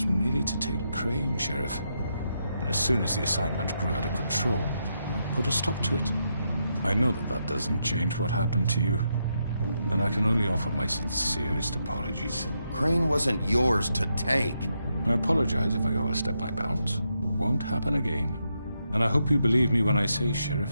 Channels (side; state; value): both; inverted; correlation -0.82